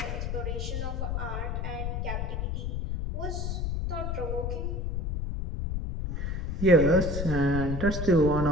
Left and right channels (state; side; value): noise; left; rumble, 2 dB below the sound